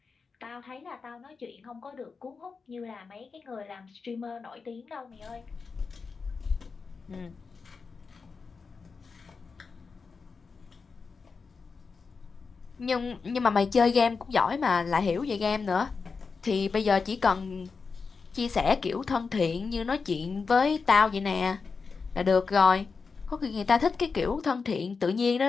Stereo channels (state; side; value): quieter; right; 4.9 dB